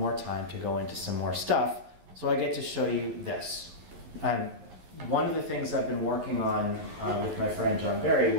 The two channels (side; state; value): left; late; 11 ms